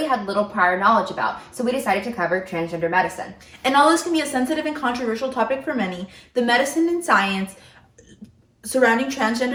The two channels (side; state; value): both; identical; correlation 1.00